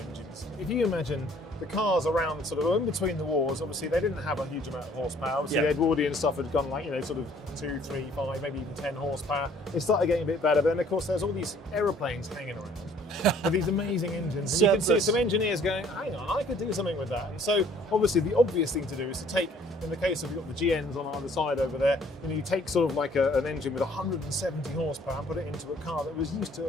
If you imagine the cars around sort of in between the wars, obviously they didn't have a huge amount of horsepower. Obviously the Edwardian stuff had gone like, you know, sort of 2, 3, 5, maybe even 10 horsepower. It started getting a bit better, but then of course there's all these aeroplanes hanging around with these amazing engines. And you can see some engineers going, hang on, I could do something with that. And so obviously the obvious thing to do is to take, in the case of you've got the GNs on either side over there, you know, you take sort of like an engine with 170 horsepower and put it into a car that was used to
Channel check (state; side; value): normal; both; correlation 0.58